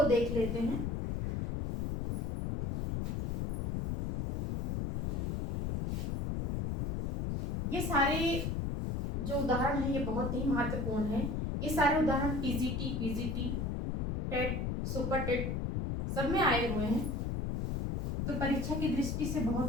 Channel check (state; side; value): noise; left; rumble, 1 dB below the sound